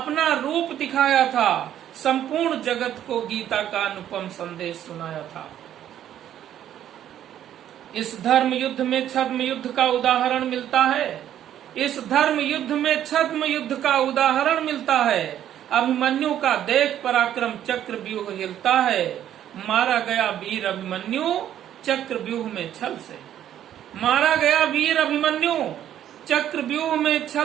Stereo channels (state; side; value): quieter; left; 11.0 dB